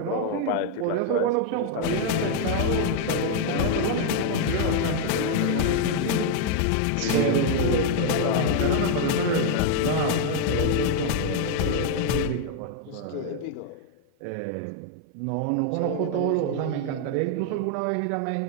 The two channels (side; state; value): both; different; correlation 0.00